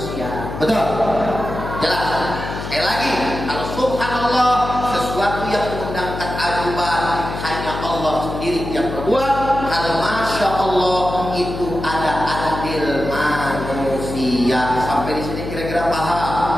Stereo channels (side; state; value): left; noise; hum, 7 dB below the sound